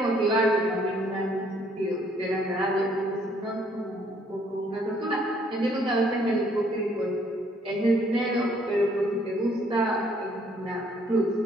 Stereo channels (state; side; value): normal; both; correlation 0.65